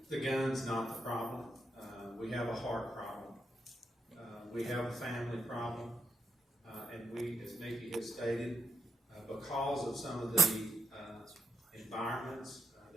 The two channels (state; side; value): normal; both; correlation 0.78